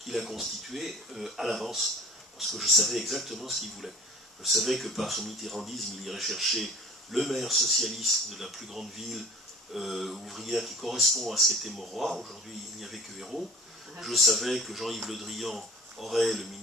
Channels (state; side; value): normal; both; correlation 0.44